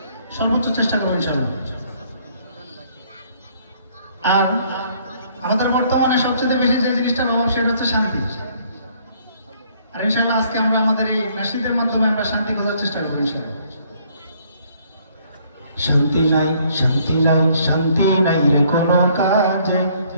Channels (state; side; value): inverted; both; correlation -0.63